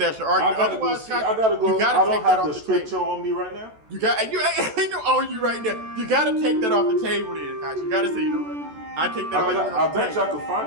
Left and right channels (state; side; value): late; left; 14 ms